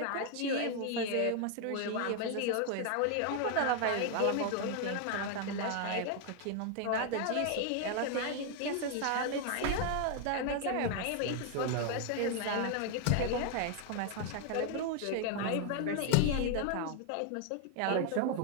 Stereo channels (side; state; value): both; different; correlation 0.00